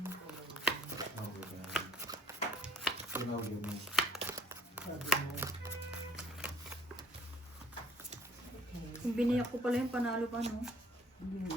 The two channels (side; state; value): both; normal; correlation 0.58